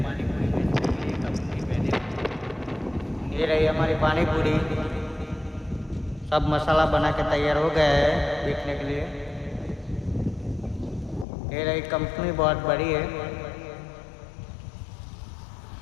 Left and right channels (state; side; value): drops out; right; at 11.2 s